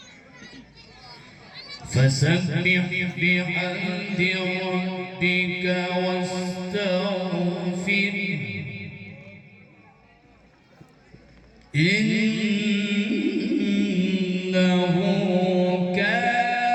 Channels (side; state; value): both; identical; correlation 1.00